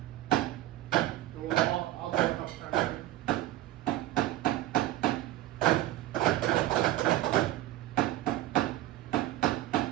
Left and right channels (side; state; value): left; quieter; 15.3 dB